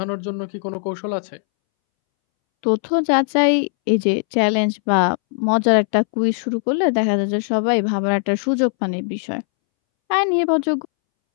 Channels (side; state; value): right; silent; 65 dB below the other